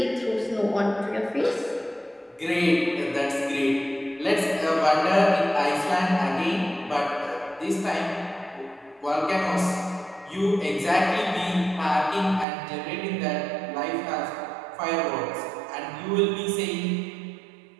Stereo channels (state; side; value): drops out; left; at 12.5 s